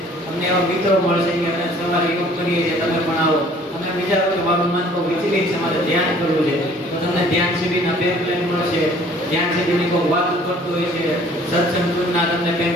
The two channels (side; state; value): both; normal; correlation 0.55